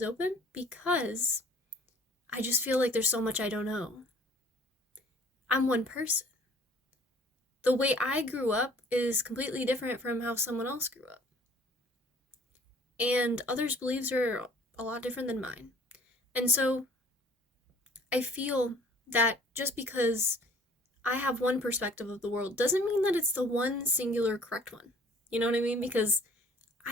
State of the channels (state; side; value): normal; both; correlation 0.53